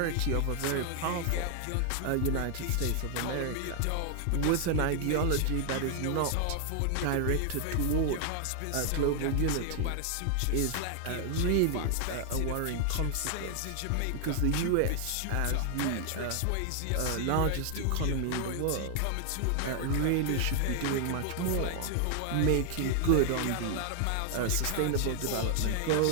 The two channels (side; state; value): both; different; correlation 0.00